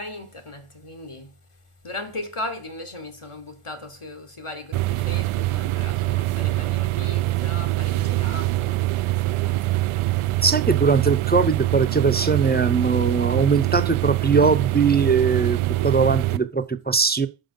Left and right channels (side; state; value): left; quieter; 7.4 dB